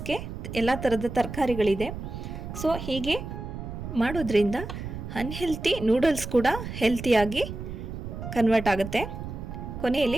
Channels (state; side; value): noise; right; rumble, 8 dB below the sound